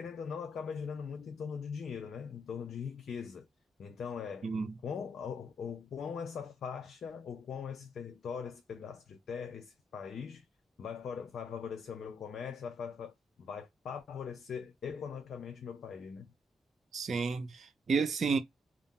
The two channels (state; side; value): normal; both; correlation 0.73